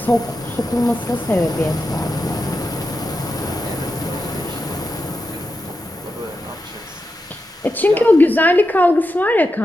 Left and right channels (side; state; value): both; normal; correlation 0.88